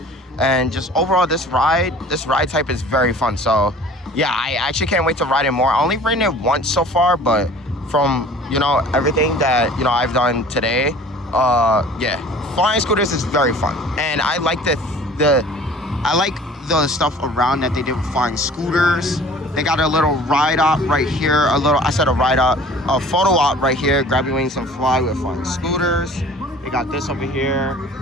And just overall, this ride type is very fun. So yeah, I actually can't wait to ride it more. I only ridden it once so far, but from, everything that, I've done today, yeah, Flying Scooters is very fun. And I like I like the stuff around that they did with Flying Scooters. They got a little ride op right here, a photo op right here, grab your wings and fly with Flying Scooters. They got this over here.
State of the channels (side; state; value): both; normal; correlation 0.47